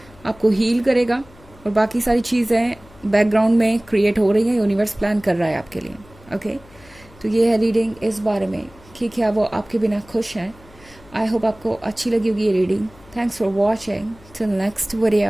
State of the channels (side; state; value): left; noise; hum, 24 dB below the sound